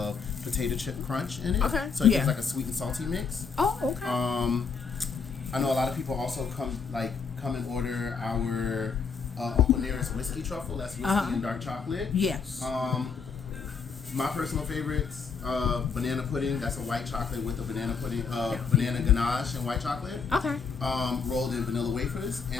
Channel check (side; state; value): right; quieter; 5.5 dB